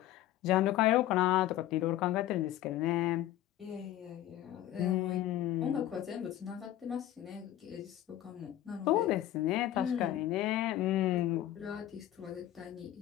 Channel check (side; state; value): right; quieter; 13.3 dB